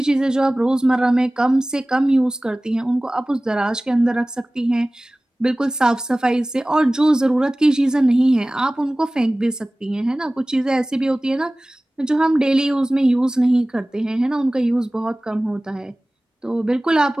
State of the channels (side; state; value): both; normal; correlation 0.98